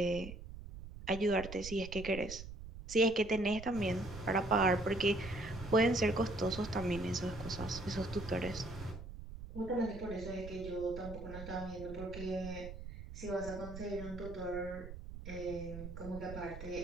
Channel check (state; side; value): noise; right; rumble, 11 dB below the sound